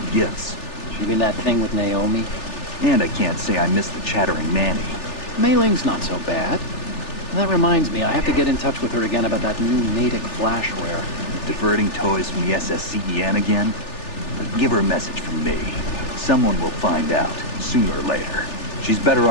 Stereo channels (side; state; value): right; late; 3.4 ms